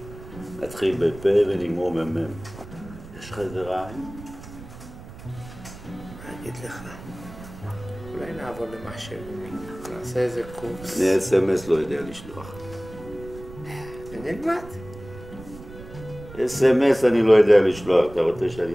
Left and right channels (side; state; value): right; noise; rumble, 16 dB below the sound